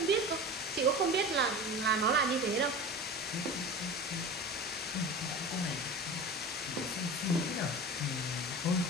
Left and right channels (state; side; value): normal; both; correlation 0.32